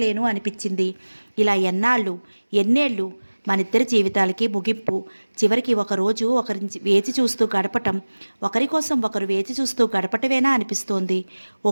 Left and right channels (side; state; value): both; inverted; correlation -1.00